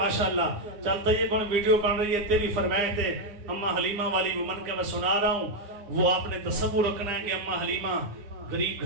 چل طیب بن ویڈیو بن رہی ہے، تیری فرمائش تے اما حلیمہ والی وہ من کے میں سنا رہا ہوں. وہ آپ نے تصور رکھنا ہے کہ اما حلیمہ غریب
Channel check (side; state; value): left; late; 9.8 ms